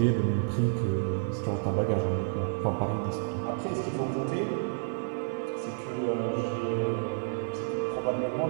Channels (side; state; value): left; silent; 57 dB below the other